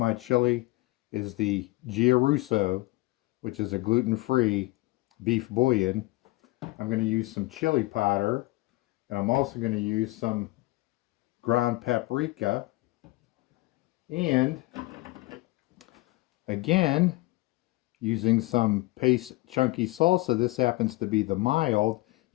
chili is the Gia Russo, which is a gluten-free beef bouillon. I'm going to use some chili powder, and I'm also going to use some ground paprika, and again using some paste chunky salsa. This happens to be the mild.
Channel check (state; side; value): quieter; right; 21.4 dB